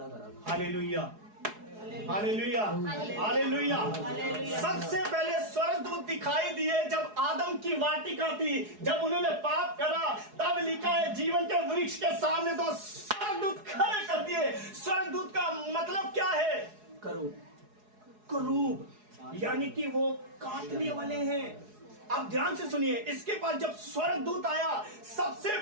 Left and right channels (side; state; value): left; late; 4.8 ms